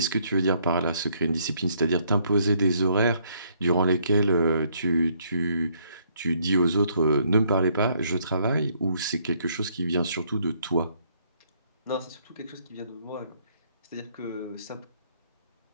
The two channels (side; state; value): both; inverted; correlation -0.68